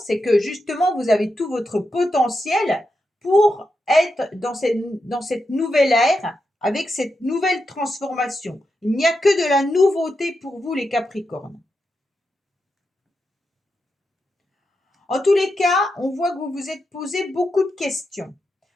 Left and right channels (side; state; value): both; normal; correlation 0.86